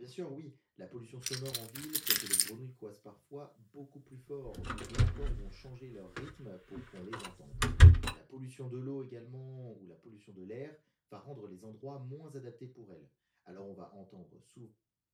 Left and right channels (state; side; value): identical; both; correlation 1.00